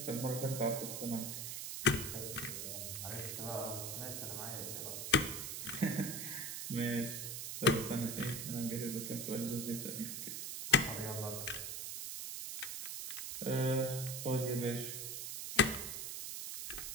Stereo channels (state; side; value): noise; right; hiss, 4 dB below the sound